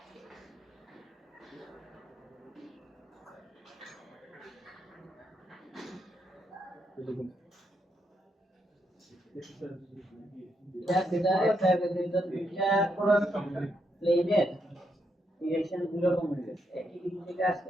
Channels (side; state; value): both; normal; correlation 0.79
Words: এটা একটা দুইটা প্লেনের ডিরেকশন গুলো কম হয়ে গেছে, একই দিক থেকে